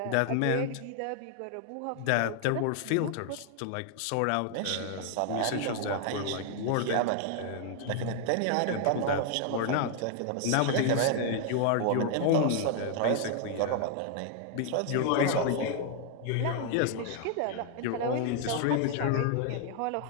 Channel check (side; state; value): both; different; correlation 0.00